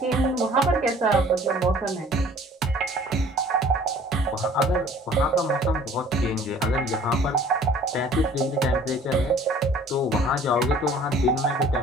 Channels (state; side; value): normal; both; correlation 0.52